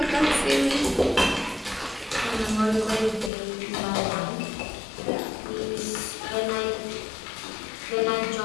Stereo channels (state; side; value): drops out; right; at 3.3 s